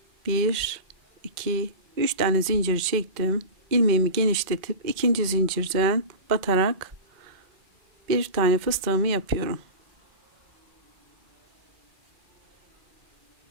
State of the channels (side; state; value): left; late; 2.1 ms